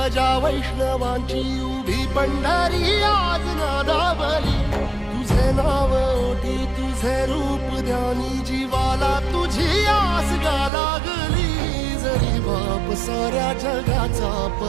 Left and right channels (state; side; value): drops out; left; at 10.7 s